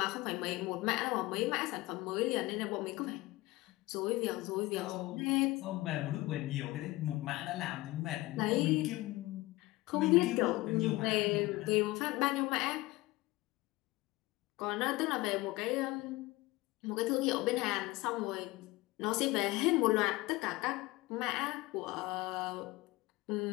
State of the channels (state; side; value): quieter; right; 20.0 dB